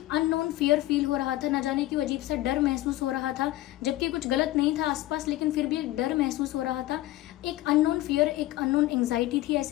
अननोन फियर फील हो रहा था, ना जाने क्यों अजीब सा डर महसूस हो रहा था, जबकि कुछ गलत नहीं था आसपास, लेकिन फिर भी एक डर महसूस हो रहा था, एक अननोन फियर, एक अननोन एंग्जाइटी थी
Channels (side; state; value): right; quieter; 16.2 dB